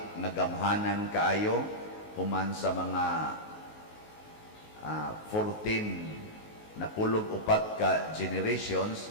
nga gamhanan kaayo human sa mga 14 na pulog upat ka generations.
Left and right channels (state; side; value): late; right; 19 ms